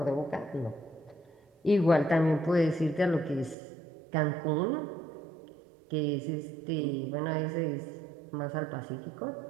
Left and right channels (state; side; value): drops out; left; at 3.6 s